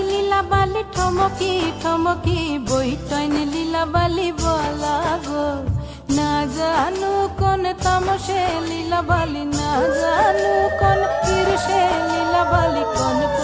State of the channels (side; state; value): both; identical; correlation 1.00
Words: lila bali ঠমকি ঠমকি বই টয়নি লীলা বালি বলা গো না জানু কোন তামসে লীলা বালি না জানু কোন ঈর্ষে লীলা বালি কোন